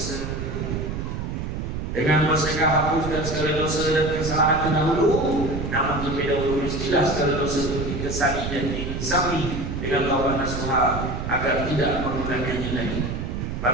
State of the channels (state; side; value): noise; right; rumble, 4 dB below the sound